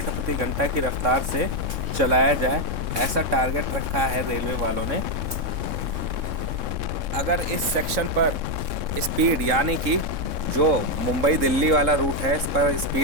प्रति घंटा की रफ्तार से चलाया जाए, ऐसा टारगेट रखा है रेलवे वालों ने। अगर इस सेक्शन पर स्पीड, यानी कि जो मुंबई दिल्ली वाला रूट है, इस पर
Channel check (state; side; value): late; left; 3.6 ms